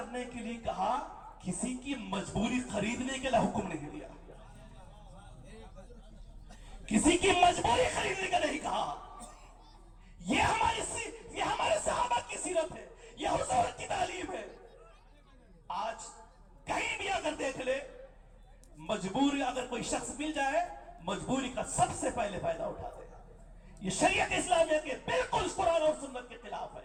کے لیے کہا، کسی کی مجبوری خریدنے کے لیے حکم نہیں دیا. کسی کی مجبوری خریدنے کا نہیں کہا. یہ ہمارے صحابہ کی سیرت ہے، یہ حضور کی تعلیم ہے. آج کہیں بھی اگر دیکھ لے، مجبوری اگر کوئی شخص مل جائے، مجبوری کا سب سے پہلے فائدہ اٹھاتے ہیں. یہ شریعت اسلامیہ کے بالکل قرآن اور سنت کے خلاف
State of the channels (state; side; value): identical; both; correlation 1.00